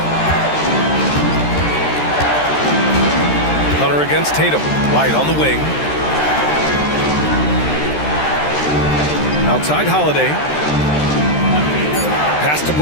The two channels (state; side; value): late; right; 13 ms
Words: Hunter against Tatum. White on the wing. Outside Holiday. Pass to